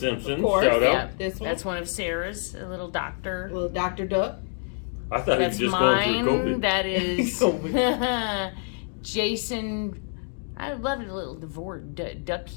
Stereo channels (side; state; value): right; silent; 61 dB below the other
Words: of course. shout out. Yeah, this one. That's one of Sarah's. A little doctor. Little Dr. Duck. I thought he was just going through COVID. That is Jason. I love it, a little